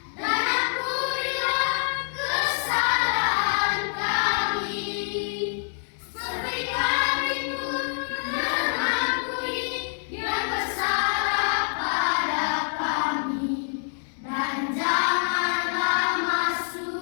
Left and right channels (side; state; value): right; silent; 61 dB below the other